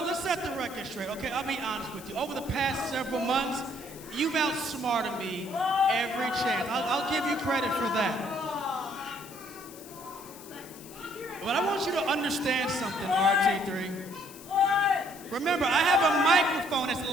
Let's set the record straight, okay? I'll be honest with you. Over the past several months, you've outsmarted me every chance. I'll give you credit for that. But I want you to understand something, RT3. Remember, I have a microphone that's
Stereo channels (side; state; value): left; noise; hiss, 18 dB below the sound